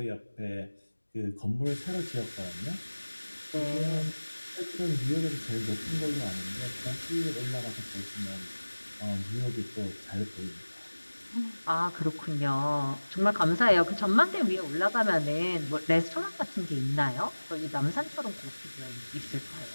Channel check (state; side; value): inverted; both; correlation -1.00